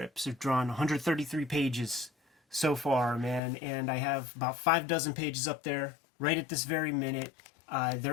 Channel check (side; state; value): right; drops out; at 3.4 s